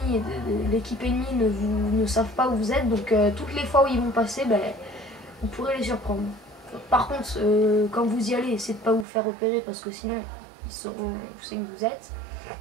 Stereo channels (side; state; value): left; drops out; at 9.1 s